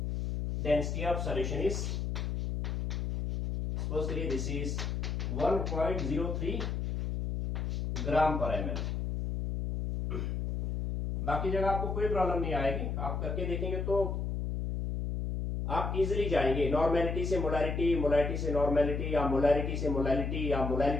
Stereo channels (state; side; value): noise; left; hum, 2 dB below the sound